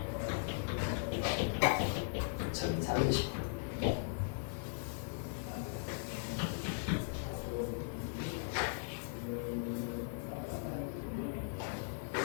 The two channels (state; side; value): silent; right; 52 dB below the other